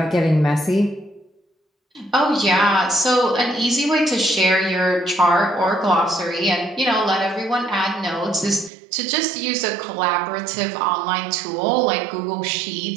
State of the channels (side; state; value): left; drops out; at 8.7 s